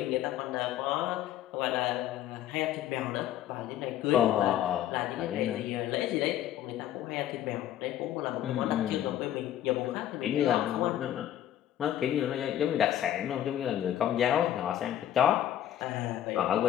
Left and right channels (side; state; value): right; quieter; 11.8 dB